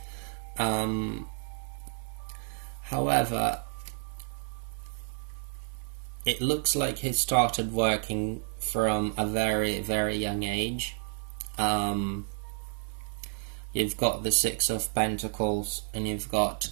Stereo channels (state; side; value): silent; left; 57 dB below the other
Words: However, it looks like he started working from a very, very young age. You've got the Six of Pentacles and you've got